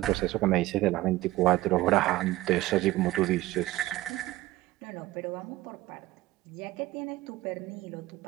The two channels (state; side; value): quieter; left; 17.2 dB